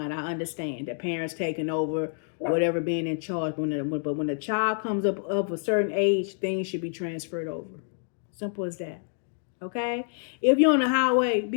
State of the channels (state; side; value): silent; right; digital silence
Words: I understand that parents taking over, whatever, being in charge. But when a child comes up of a certain age, things should be transferred over. Simple as that. Okay? If you're on the highway,